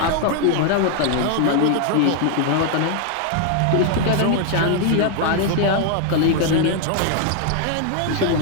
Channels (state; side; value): different; both; correlation 0.00